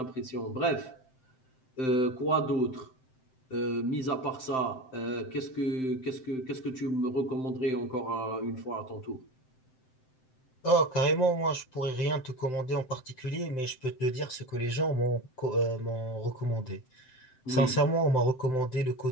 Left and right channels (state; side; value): late; right; 7.7 ms